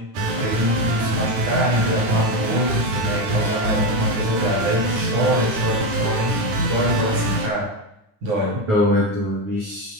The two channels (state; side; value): late; left; 10 ms